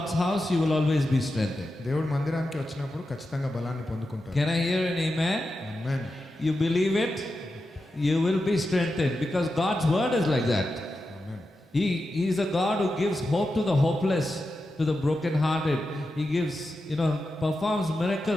house, you will always be strengthened. దేవుడి మందిరానికి వచ్చినప్పుడు ఖచ్చితంగా బలాన్ని పొందుకుంటారు. Can I hear an amen? Amen. You believe it, you will be strengthened, because God's word is like that. Amen. He is a God who gives hope to the hopeless, to the broken hearted. He gives, performs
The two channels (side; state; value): both; normal; correlation 0.90